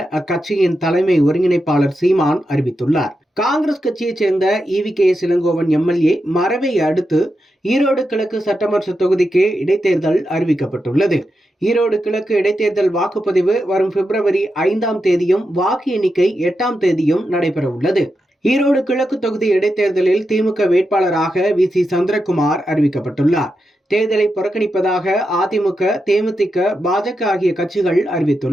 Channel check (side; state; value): both; normal; correlation 0.87